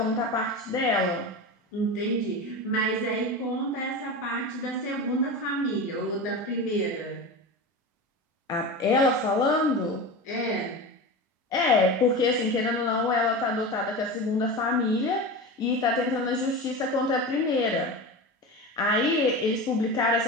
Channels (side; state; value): both; normal; correlation 0.26